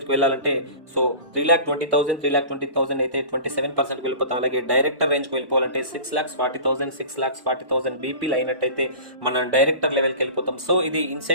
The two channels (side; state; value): left; late; 1.1 ms